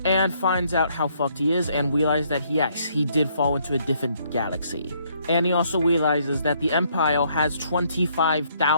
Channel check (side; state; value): both; inverted; correlation -0.69